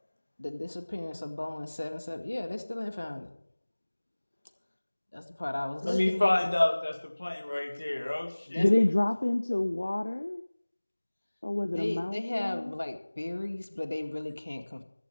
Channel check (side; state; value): both; inverted; correlation -1.00